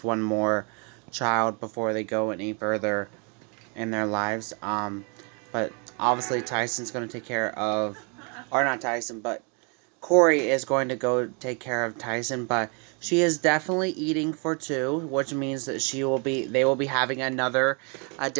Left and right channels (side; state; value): left; quieter; 35.5 dB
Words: one more child before they go any further. in their lives. But obviously Tyson's going to take care of, or not Tyson, but Korey is going to go take care of Tyson. But she is definitely eating for two, which means that they will be having another